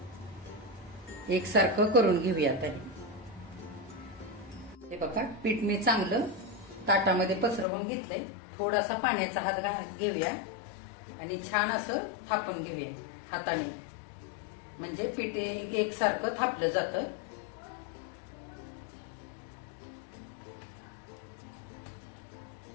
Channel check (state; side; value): drops out; right; at 7.7 s